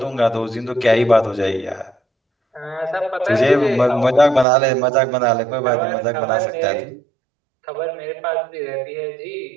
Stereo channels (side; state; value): left; drops out; at 4.5 s